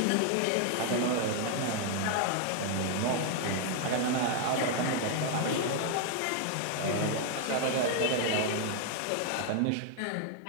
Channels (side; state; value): both; different; correlation 0.00